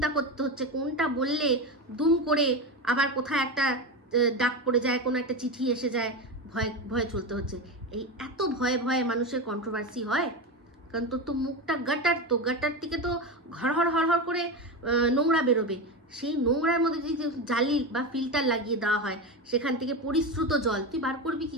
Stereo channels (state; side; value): normal; both; correlation 0.19